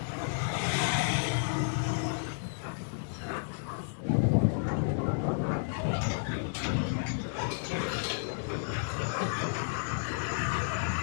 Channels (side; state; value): right; silent; digital silence